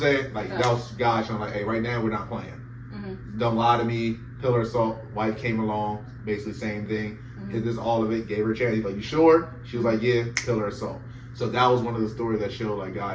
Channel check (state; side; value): identical; both; correlation 1.00